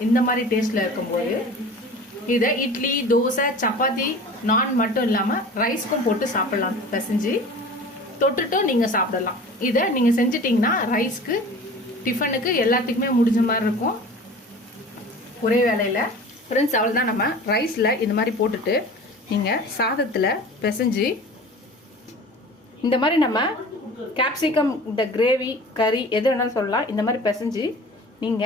இந்த மாதிரி டேஸ்ட்டில் இருக்கும்போது. இதை இட்லி, தோசை, சப்பாத்தி, நான் மட்டும் இல்லாமல் ரைஸ்க்கும் போட்டு சாப்பிட்லாம். பிசைஞ்சு தொட்டுட்டும் நீங்கள் சாப்பிடலாம். இதை நீங்கள் செஞ்சிட்டிங்கன்னா ரைஸ்க்கு, டிஃபனுக்கு எல்லாத்துக்குமே முடிஞ்ச மாதிரி இருக்கும் ஒரே வேலையில். ஃப்ரெண்ட்ஸ், அவ்வளோதான். நம்ம ரைஸில் இந்த மாதிரி போட்டுட்டு நீங்கள் சாதத்தில் பிசைஞ்சு இந்த மாதிரி நம்ம கேப்சிகம் இந்த கிரேவி கறி எது வேணாலும் சொல்லலாம். இந்த மாதிரி பிசைஞ்சு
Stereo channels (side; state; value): both; normal; correlation 0.40